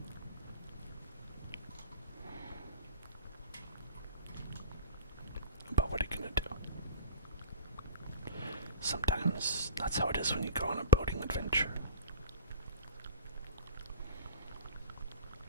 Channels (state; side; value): inverted; both; correlation -0.38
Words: But what are you gonna do? Sometimes that's how it is when you go on a boating adventure.